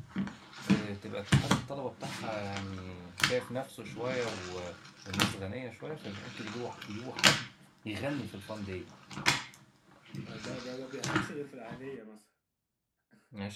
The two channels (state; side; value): identical; both; correlation 1.00